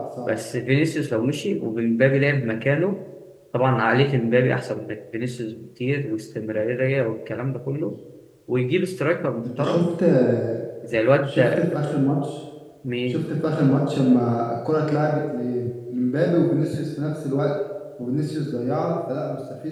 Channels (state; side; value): identical; both; correlation 1.00